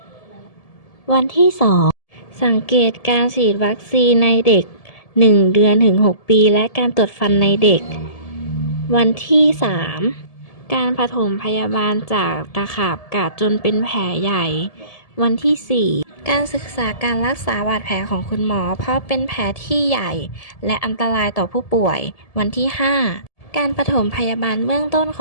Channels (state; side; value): late; right; 1.7 ms